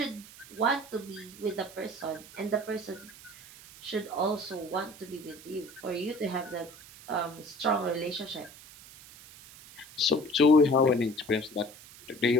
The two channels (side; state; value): right; noise; hiss, 19 dB below the sound